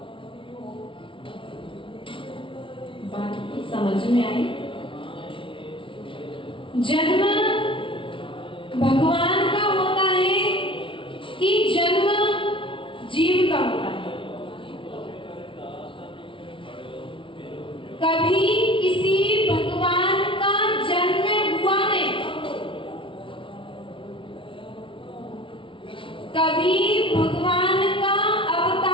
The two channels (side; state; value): right; late; 0.25 ms